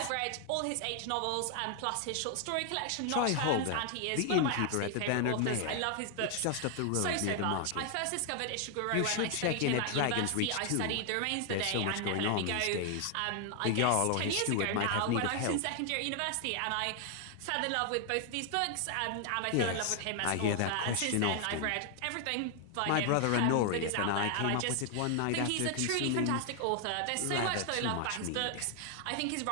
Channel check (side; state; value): both; different; correlation 0.00